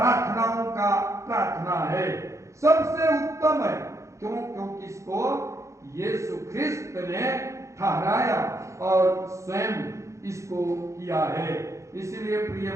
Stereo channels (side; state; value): left; late; 0.15 ms